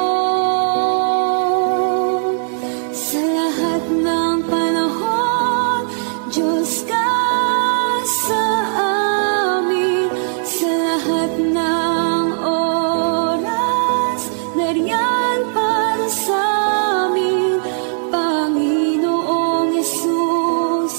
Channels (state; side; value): silent; left; digital silence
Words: Sa lahat ng panahon, Diyos ka sa amin. Sa lahat ng oras, nariyan para sa amin. Panginoong